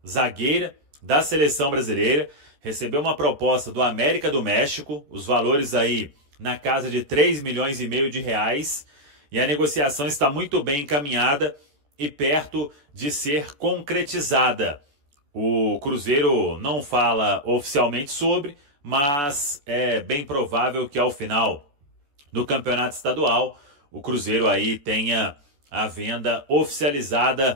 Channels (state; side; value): late; left; 14 ms